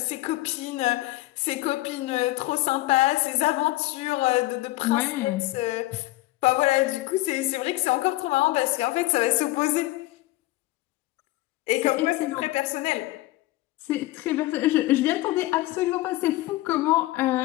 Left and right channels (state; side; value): quieter; right; 18.3 dB